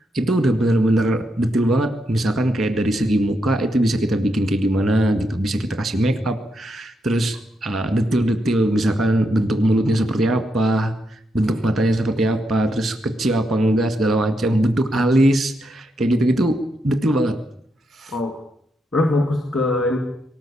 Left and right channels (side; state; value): both; normal; correlation 0.81